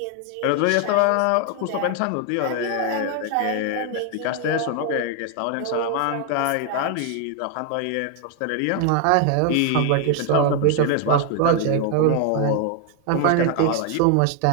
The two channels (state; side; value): different; both; correlation 0.01